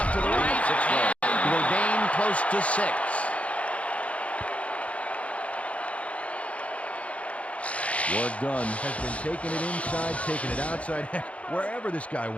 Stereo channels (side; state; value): right; late; 0.064 ms